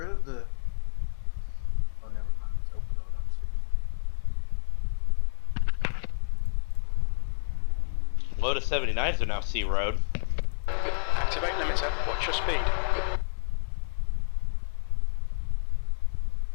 of the... Oh, never mind. It's open road. I'm stupid. Lotus 79s are now C road. Activate limiter. Watch your speed.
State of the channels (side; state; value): right; silent; 59 dB below the other